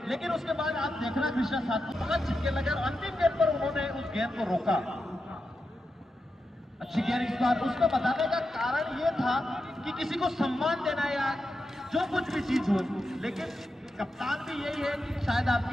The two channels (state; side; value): normal; both; correlation 0.88